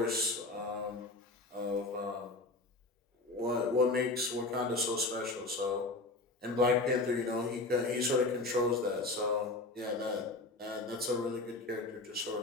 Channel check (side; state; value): right; quieter; 3.2 dB